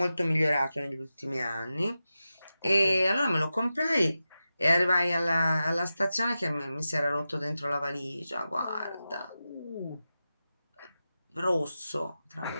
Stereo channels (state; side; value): inverted; both; correlation -0.92